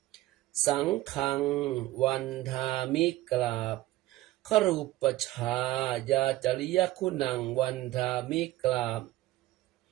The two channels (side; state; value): left; quieter; 16.6 dB